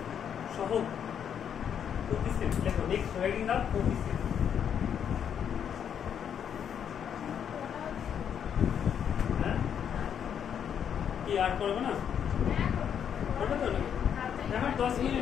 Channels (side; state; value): right; quieter; 8.4 dB